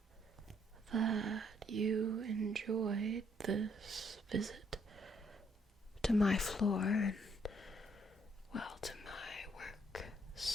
that you enjoyed this visit to my floor and, well, to my work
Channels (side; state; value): both; normal; correlation 0.69